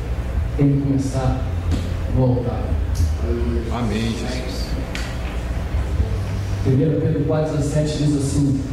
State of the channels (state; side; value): identical; both; correlation 1.00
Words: tem que começar no altar. Amém, Jesus. 1 Pedro 4,17 diz assim: